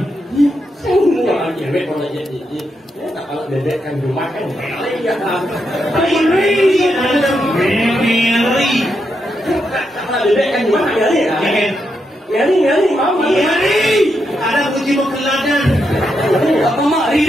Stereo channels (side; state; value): both; normal; correlation 0.83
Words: Sao mua là chuyện về còn là chuyện gì? Nếu là để anh dùng mắt cái mẹ lấy ra làm. Meri, Meri. Là để anh dùng mắt cái gì à? Nhớ đi máu mà. Meri. Ada kunci pengeladan. Apa mak